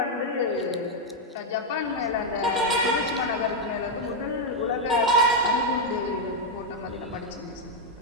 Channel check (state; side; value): normal; both; correlation 0.00